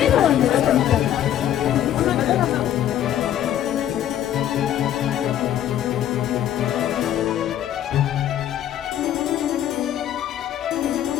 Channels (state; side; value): quieter; right; 11.2 dB